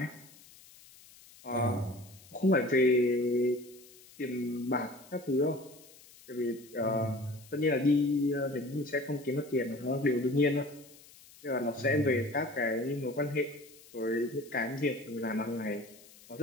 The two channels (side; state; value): left; noise; hiss, 23 dB below the sound